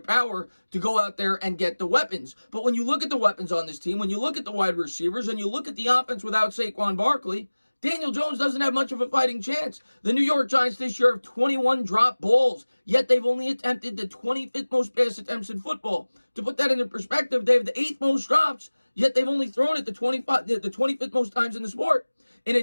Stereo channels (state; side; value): inverted; both; correlation -1.00